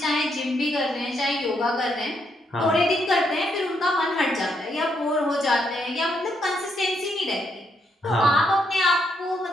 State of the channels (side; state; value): both; normal; correlation 0.76